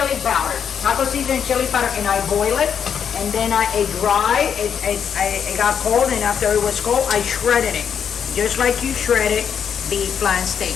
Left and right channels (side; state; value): right; quieter; 7.7 dB